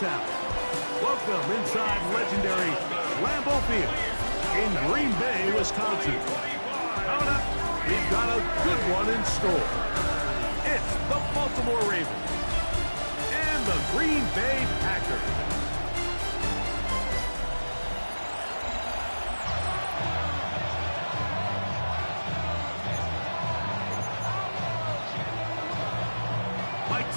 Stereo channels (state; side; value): inverted; both; correlation -1.00